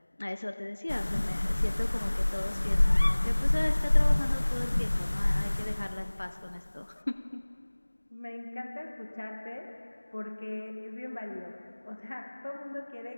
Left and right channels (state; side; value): inverted; both; correlation -1.00